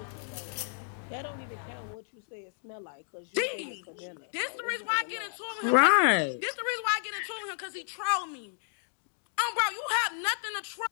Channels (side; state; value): right; silent; digital silence